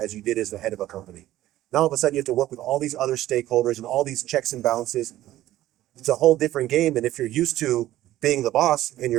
you did as the head of a company. Now all of a sudden you have to work with all these other stakeholders and all these checks and balances. It's a whole different game. And if you're used to being the boss and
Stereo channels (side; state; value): left; quieter; 14.4 dB